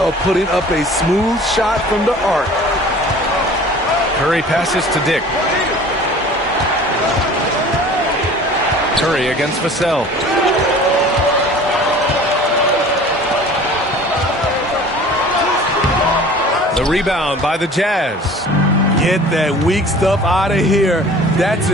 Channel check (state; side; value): normal; both; correlation 0.45